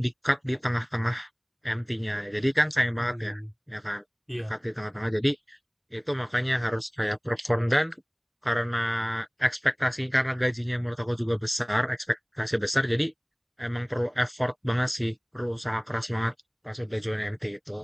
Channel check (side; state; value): both; identical; correlation 1.00